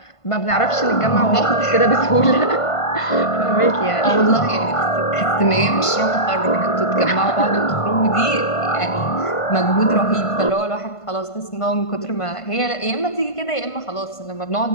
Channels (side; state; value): right; late; 1.5 ms